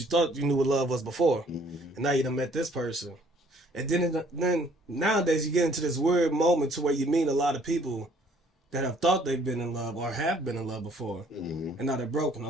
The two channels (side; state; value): both; normal; correlation 0.60